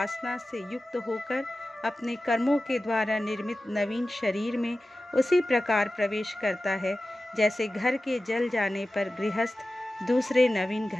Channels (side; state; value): both; normal; correlation 0.95